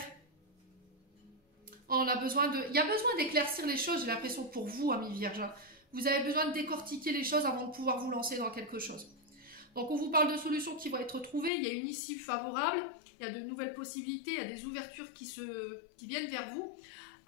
On a besoin de... Il y a besoin d'éclaircir les choses, j'ai l'impression, pour vous, Amis Vierges. Vous avez besoin de décortiquer les choses avant de pouvoir vous lancer dans quelque chose. Donc on vous parle de solutions qui vont être trouvées, il y a une issue favorable, il y a de nouvelles possibilités, il y a des ouvertures qui viennent vers vous.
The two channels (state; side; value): drops out; right; at 11.5 s